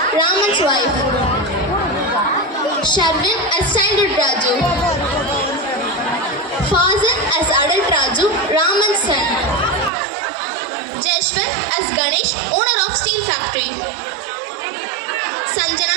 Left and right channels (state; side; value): drops out; left; at 9.9 s